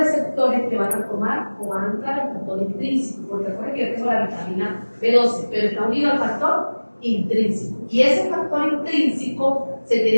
que van a tomar o van a entrar al factor intrínseco, porque recuerden que yo tengo la vitamina B12, pero está unido al factor intrínseco. Y ese factor intrínseco se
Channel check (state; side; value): inverted; both; correlation -1.00